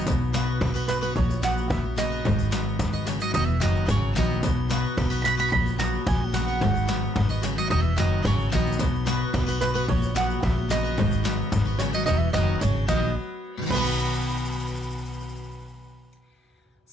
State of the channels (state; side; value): normal; both; correlation 0.76